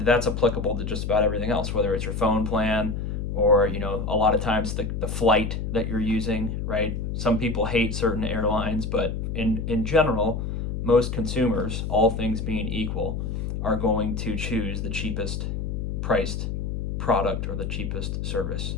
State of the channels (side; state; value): left; noise; hum, 3 dB below the sound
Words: that's applicable to just about everything else, whether it's your phone plan or, a lot of times the flight that you're using, right? Some people hate certain airlines, but in general, most consumers, all things being equal, are going to choose the cheapest priced product or the cheapest service